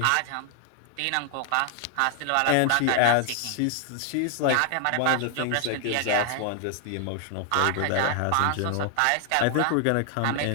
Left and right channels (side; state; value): both; different; correlation 0.00